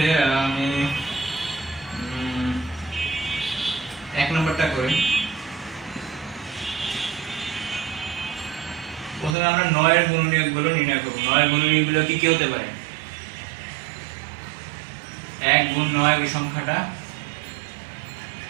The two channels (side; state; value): left; drops out; at 9.3 s